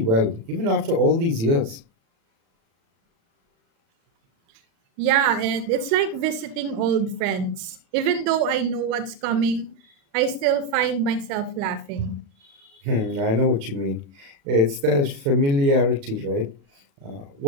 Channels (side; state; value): left; late; 36 ms